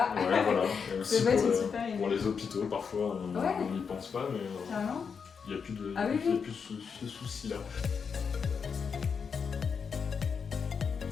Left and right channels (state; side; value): quieter; right; 6.1 dB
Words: voilà. Et aussi pour les hôpitaux, parfois, on n'y pense pas, mais il n'y a plus de ce souci-là.